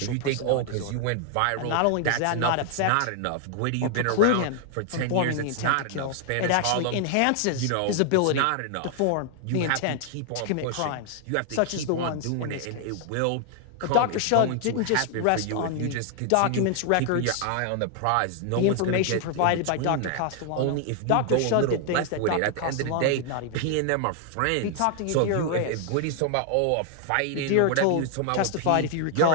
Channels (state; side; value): different; both; correlation 0.00